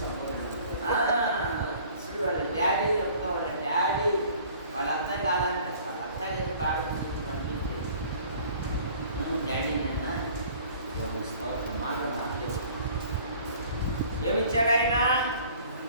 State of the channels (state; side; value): inverted; both; correlation -0.51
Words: చూడు వాళ్ళ డాడీ చెప్తా, వాళ్ళ డాడీ వాళ్ళ అత్త కాదంట, వాళ్ళ అత్త కలిసి ప్రార్థన చేసి పంపించి డాడీ నిన్న మాట మాట్లాడు. ఏమిచ్చాడు ఆయన?